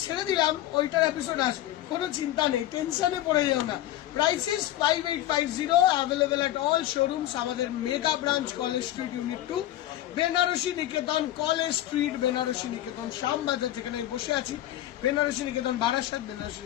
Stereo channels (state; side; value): quieter; right; 13.9 dB